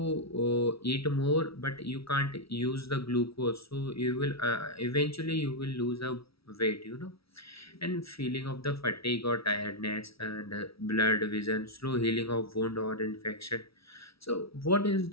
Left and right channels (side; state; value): right; late; 0.76 ms